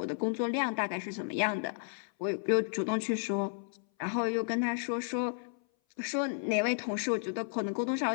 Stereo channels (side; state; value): right; silent; 56 dB below the other